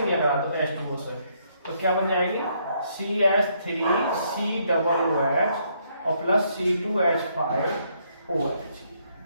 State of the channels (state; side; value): inverted; both; correlation -0.71